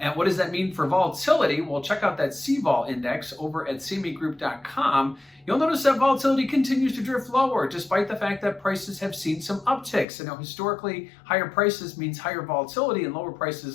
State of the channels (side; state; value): right; drops out; at 10.1 s